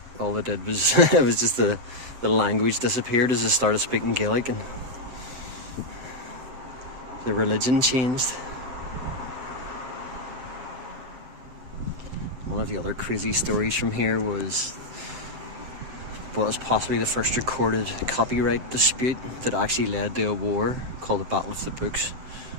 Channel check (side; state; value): left; late; 7.7 ms